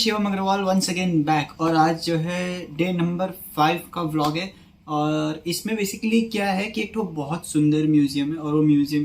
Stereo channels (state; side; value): identical; both; correlation 1.00